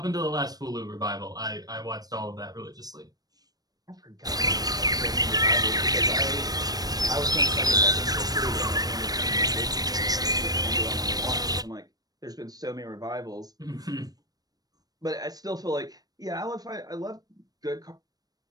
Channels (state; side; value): late; left; 0.19 ms